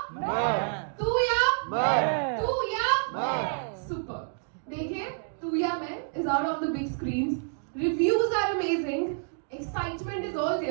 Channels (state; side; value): silent; left; digital silence